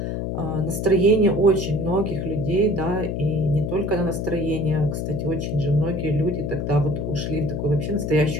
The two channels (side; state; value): left; noise; hum, 3 dB below the sound